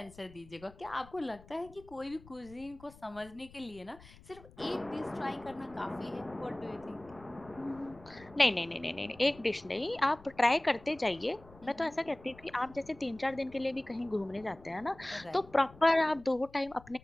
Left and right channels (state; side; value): noise; left; rumble, 22 dB below the sound